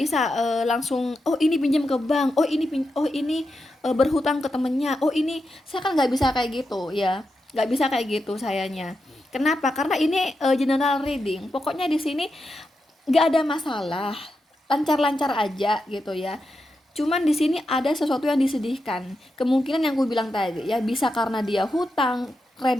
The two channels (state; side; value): normal; both; correlation 0.87